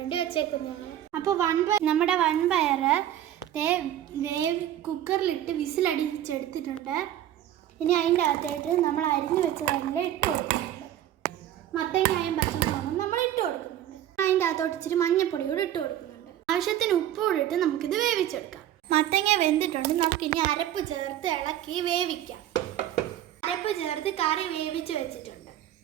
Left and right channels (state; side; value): quieter; left; 12.0 dB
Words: വെച്ചേക്കുന്നതാണ്. അപ്പോൾ നമ്മുടെ വൻപയർ കുക്കറിലിട്ട് വിസിലടിച്ചെടുത്തിട്ടുണ്ട്. ഇനി അതിൻ്റെ അകത്തായിട്ട് നമ്മൾ അരിഞ്ഞു വെച്ചതെല്ലാം ഇട്ട് കൊടുക്കുന്നുണ്ട്. മത്തങ്ങയും പച്ചമുളകും നമ്മൾ ഇട്ട് കൊടുക്കുന്നുണ്ട്. അതിൻ്റെ അകത്തോട്ട് ഇച്ചിരി മഞ്ഞപ്പൊടിയോട് ഇട്ട് കൊടുക്കുന്നുണ്ട്. ആവശ്യത്തിന് ഉപ്പോട് ഇട്ട് നമുക്കിത് വേവിച്ചെടുക്കാം. മത്തങ്ങ വെന്തിട്ടുണ്ട്. നമുക്കിനി അരപ്പ് ചേർത്ത് ഇളക്കി വേവിക്കാം. അരപ്പ് ചേർത്ത് കറി വേവിച്ച് വെച്ചിട്ടുണ്ട്.